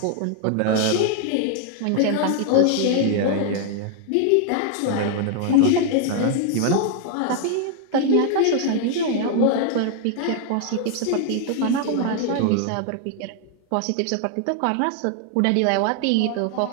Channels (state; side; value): different; both; correlation 0.00